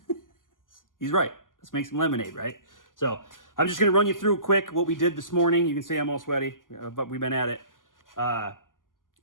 He's right. Let's make some lemonade, right? So I'm just going to run you through quick what we did this morning. You can see I'm all sweaty, but we've been at it. I'm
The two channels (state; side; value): late; right; 0.89 ms